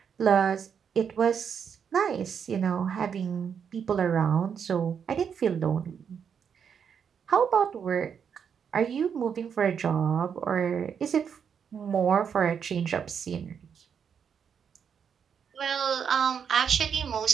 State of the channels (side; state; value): left; quieter; 7.3 dB